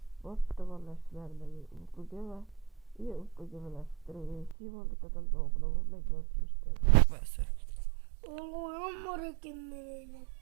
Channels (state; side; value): drops out; left; at 4.5 s